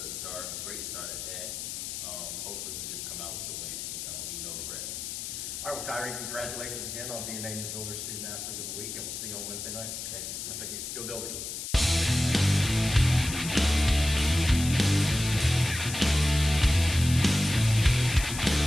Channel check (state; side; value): noise; left; hiss, 6 dB below the sound